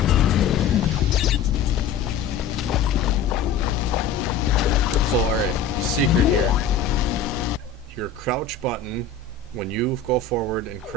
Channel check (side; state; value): right; quieter; 5.8 dB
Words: all right, secret here. Your crouch button, when you go forward and